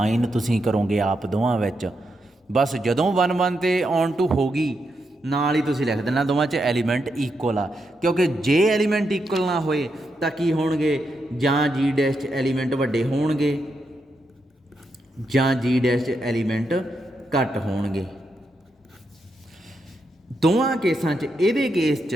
ਤੁਸੀਂ ਕਰੋਗੇ ਆਪ ਦੋਵਾਂ ਵਿੱਚ। ਬਸ ਜਦੋਂ 1 1 ਤੇ ਔਨ ਟੂ ਹੋ ਗਈ, ਨਾਲ ਹੀ ਤੁਸੀਂ ਲਿਖ ਦੇਣਾ ਦੋਵਾਂ 'ਚ ਐਲੀਮੈਂਟ ਇਕੁਅਲ ਆ। ਕਿਉਂਕਿ ਜੇ ਐਲੀਮੈਂਟ ਇਕੁਅਲ ਨਾ ਹੋਏ ਤਾਂ ਕੀ ਹੋਣਗੇ, ਜਾਂ ਜੀ ਡੈਸ਼ 'ਚ ਐਲੀਮੈਂਟ ਵੱਡੇ ਹੋਣਗੇ ਜਾਂ ਜੀ ਡੈਸ਼ 'ਚ ਐਲੀਮੈਂਟ ਘੱਟ ਹੋਣਗੇ। ਦੋਵਾਂ ਕੇਸਾਂ 'ਚ, ਇਹਦੇ ਕੇਸ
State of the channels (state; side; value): normal; both; correlation 0.83